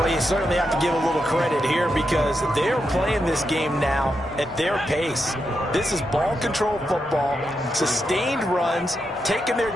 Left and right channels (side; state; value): both; normal; correlation 0.85